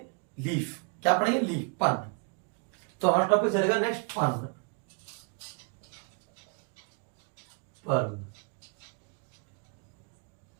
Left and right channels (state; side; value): quieter; left; 35.9 dB